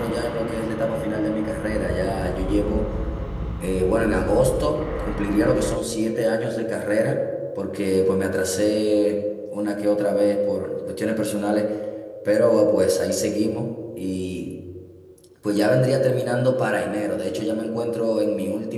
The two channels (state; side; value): identical; both; correlation 1.00